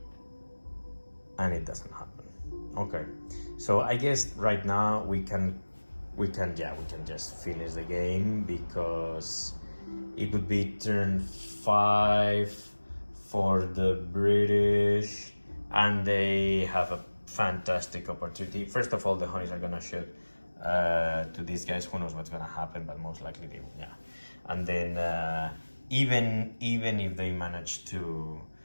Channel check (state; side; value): inverted; both; correlation -1.00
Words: and it doesn't happen. Okay. So I guess right now we can just finish the game because it would be turn 5 for the British, and they have a fantastic opportunity. First of all, the Honeys are gonna shoot to these guys. Who knows what's gonna happen, but most likely they will. Yeah. And then even if they manage to